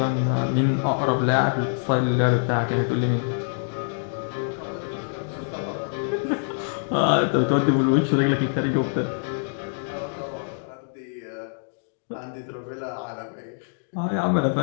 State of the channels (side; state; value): right; silent; digital silence